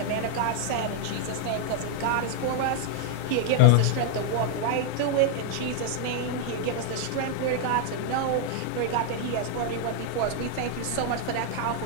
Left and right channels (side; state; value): both; different; correlation 0.00